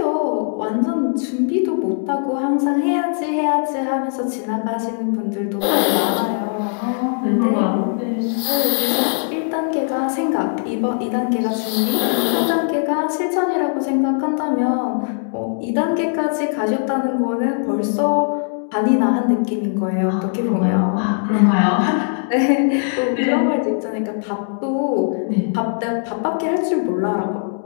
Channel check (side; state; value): right; silent; digital silence